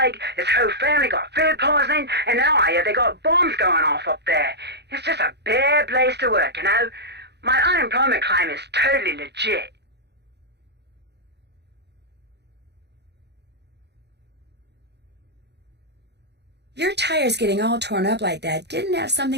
his whole family got food poisoning, and now I hear they got bombs going off up there. It's just a bad place to work, you know? My unemployment claim is totally legit. Your tires getting all torn up like that didn't have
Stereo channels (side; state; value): left; late; 0.49 ms